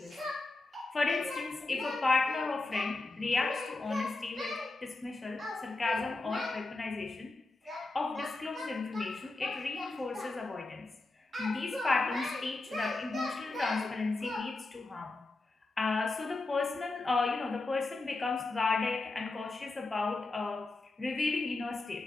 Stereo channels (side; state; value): right; quieter; 3.2 dB